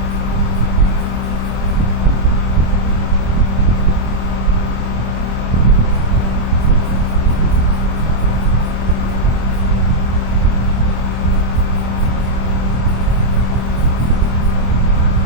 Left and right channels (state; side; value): late; left; 25 ms